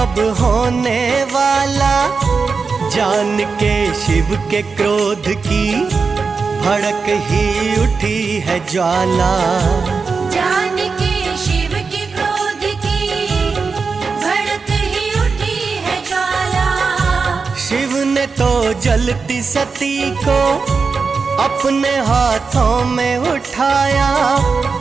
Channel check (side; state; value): left; quieter; 4.8 dB